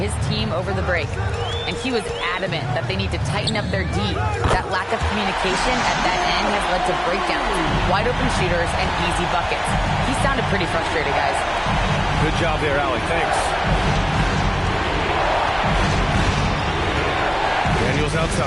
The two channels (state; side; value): identical; both; correlation 1.00